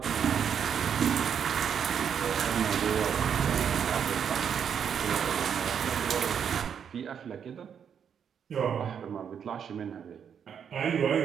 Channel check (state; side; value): quieter; left; 7.8 dB